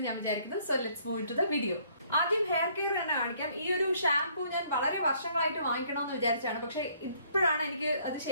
ഞാൻ വിചാരിക്കുന്നു. So let's move to the video. ആദ്യം ഹെയർ കെയർ തന്നെ കാണിക്കാം. ഈ ഒരു ഷാംപൂ ഞാൻ വളരെ വർഷങ്ങളായിട്ട് വാങ്ങിക്കണമെന്ന് വിചാരിച്ചാണ്, പക്ഷെ ഇപ്പോഴാണ് എനിക്ക് അത്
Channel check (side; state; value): both; inverted; correlation -0.63